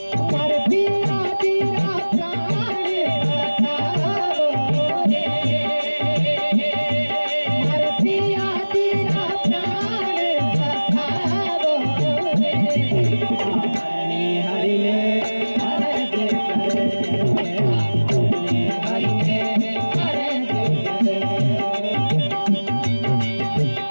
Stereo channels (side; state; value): both; inverted; correlation -1.00